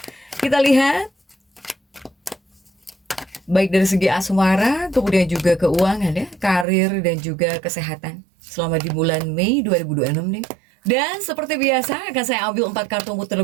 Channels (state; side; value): drops out; left; at 6.7 s